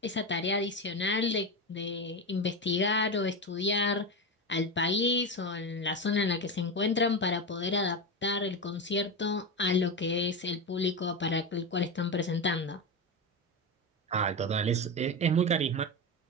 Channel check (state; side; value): normal; both; correlation 0.17